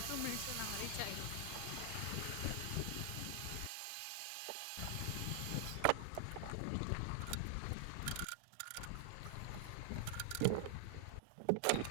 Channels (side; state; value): both; different; correlation 0.00